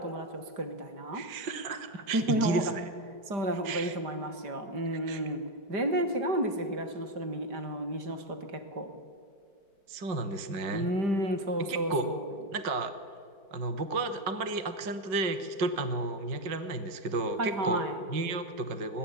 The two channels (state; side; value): late; left; 5.4 ms